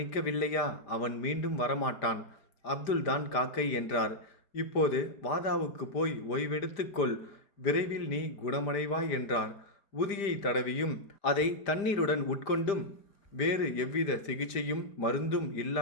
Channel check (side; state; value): right; late; 5.0 ms